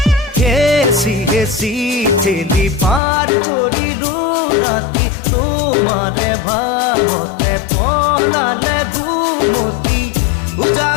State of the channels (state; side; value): drops out; right; at 3.0 s